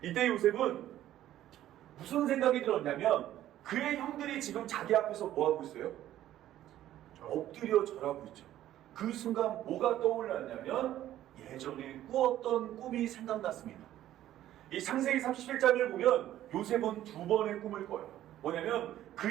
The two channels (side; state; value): left; quieter; 12.9 dB